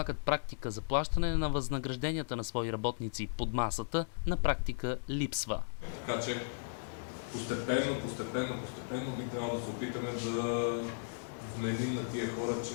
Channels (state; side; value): silent; right; digital silence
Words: практика за плащане на възнагражденията на свои работници под масата, на практика липсва. Така че постепенно би трябвало да се опитаме да вменим на тия хора,